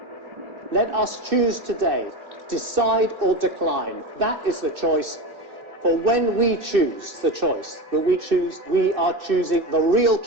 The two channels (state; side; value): late; left; 2.6 ms